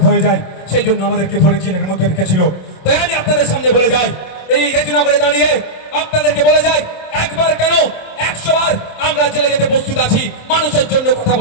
হয়ে যায়। সেই জন্য আমাদেরকে ধরে জেলের মধ্যে রেখেছিল। তাই আমি আপনাদের সামনে বলে যাই, এই রেজিনগরে দাঁড়িয়ে আপনাদেরকে বলে যাই, একবার কেন 100 বার আমরা জেলে যেতে প্রস্তুত আছি। মানুষের জন্য কথা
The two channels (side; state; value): right; late; 27 ms